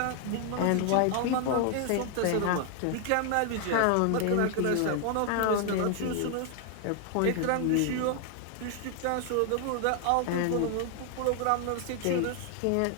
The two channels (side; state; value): both; different; correlation 0.00